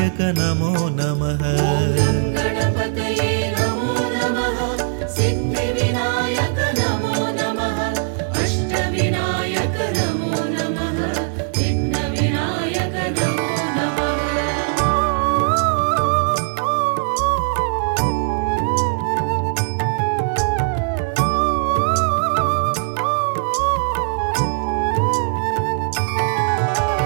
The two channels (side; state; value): left; silent; digital silence